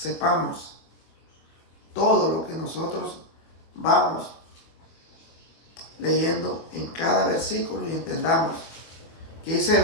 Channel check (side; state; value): right; late; 24 ms